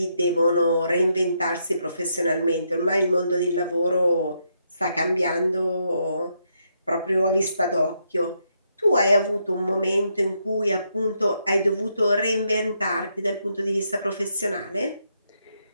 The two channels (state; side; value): inverted; both; correlation -0.78